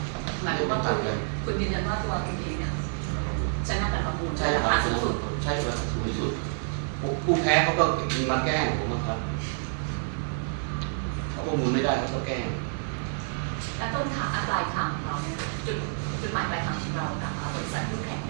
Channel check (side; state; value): left; silent; 58 dB below the other